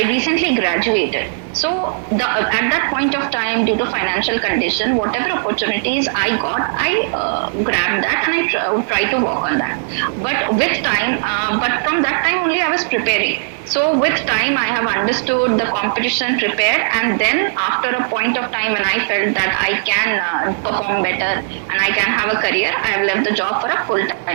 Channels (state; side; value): silent; left; digital silence